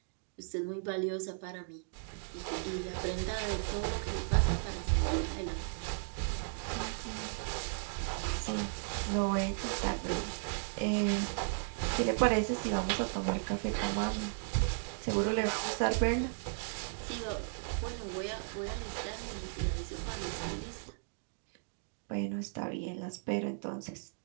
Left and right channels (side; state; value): left; silent; digital silence